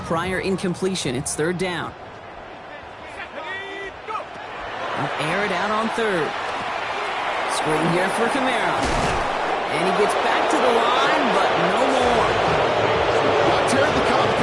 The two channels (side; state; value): both; identical; correlation 1.00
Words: prior incompletion, it's third down. They'll air it out on third. Screen here for Kamara. And he gets back to the line, but no more. Not terribly